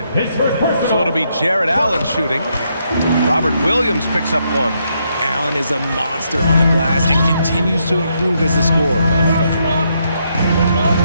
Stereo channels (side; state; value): both; inverted; correlation -0.77